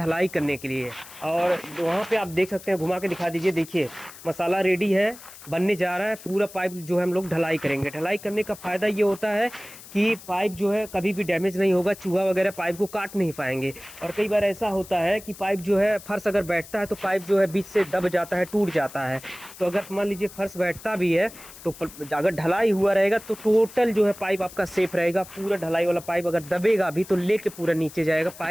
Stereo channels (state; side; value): noise; left; hiss, 17 dB below the sound